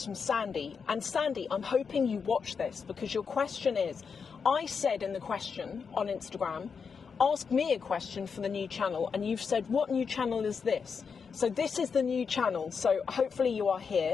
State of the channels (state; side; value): quieter; right; 5.9 dB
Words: from Sandy. And Sandy, I'm hoping you watch this because your question is, I said in the question on Instagram, ask me a question for the new channel, and you've said, what new channel is this? So this is the new channel, so hopefully you are